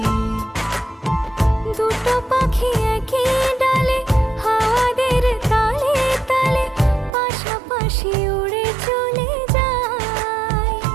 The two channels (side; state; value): left; drops out; at 7.1 s